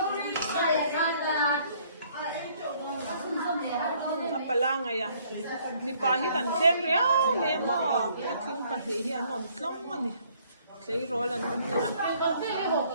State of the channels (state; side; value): inverted; both; correlation -0.63